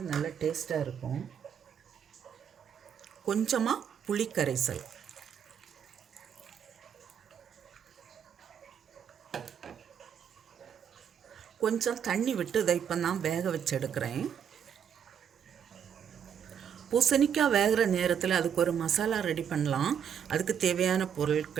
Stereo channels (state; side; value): quieter; left; 8.3 dB